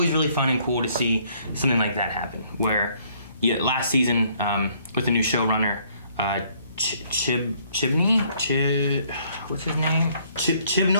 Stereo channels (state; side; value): inverted; both; correlation -0.64